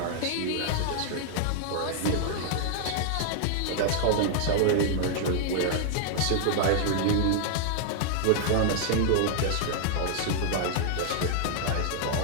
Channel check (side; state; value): both; different; correlation -0.01